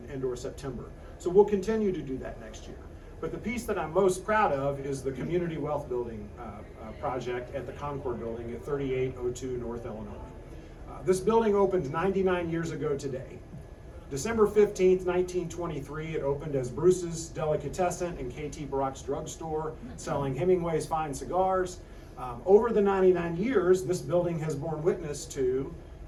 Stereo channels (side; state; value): both; identical; correlation 1.00